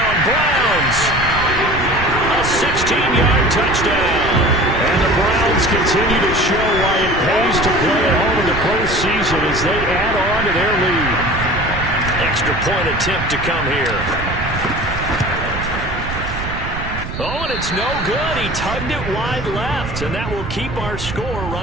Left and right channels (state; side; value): noise; right; rumble, 8 dB below the sound